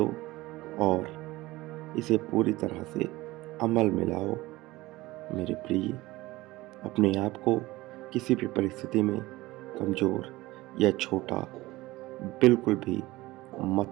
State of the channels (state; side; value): quieter; left; 19.2 dB